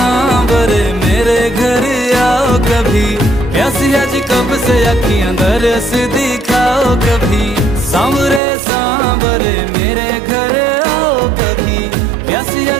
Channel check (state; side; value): drops out; left; at 8.4 s